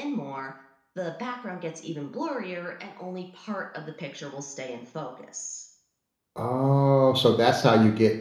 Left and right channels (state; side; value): identical; both; correlation 1.00